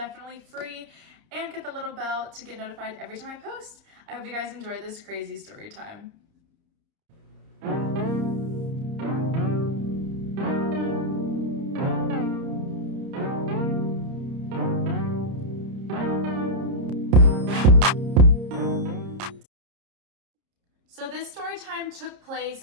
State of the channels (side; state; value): left; late; 30 ms